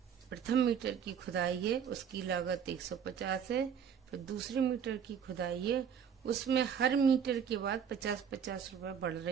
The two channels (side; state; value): left; quieter; 7.8 dB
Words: मीटर की खुदाई है उसकी लागत 150 है। फिर दूसरे मीटर की खुदाई है उसमें हर मीटर के बाद 50-50 रुपए बढ़